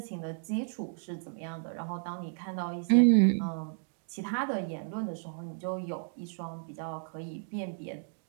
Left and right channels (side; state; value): left; silent; digital silence